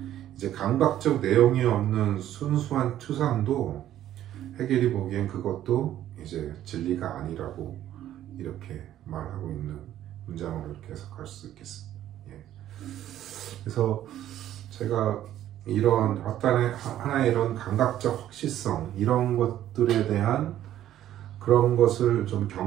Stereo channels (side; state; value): left; quieter; 12.2 dB